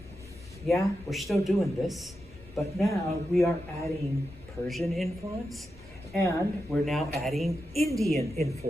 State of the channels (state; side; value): normal; both; correlation 0.88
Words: yeah, we're still doing this, but now we are adding Persian influence, and we're now adding Indian